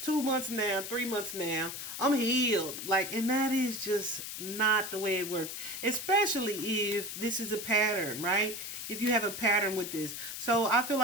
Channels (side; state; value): left; noise; hiss, 7 dB below the sound